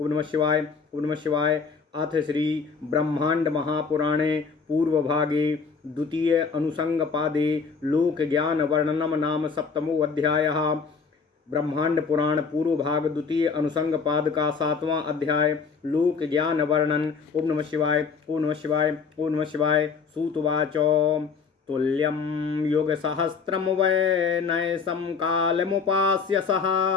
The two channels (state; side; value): quieter; right; 5.4 dB